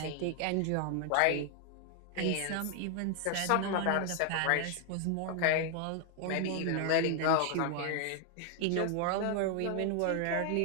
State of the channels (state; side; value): different; both; correlation 0.00